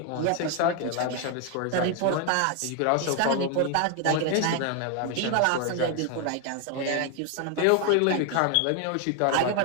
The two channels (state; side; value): different; both; correlation 0.01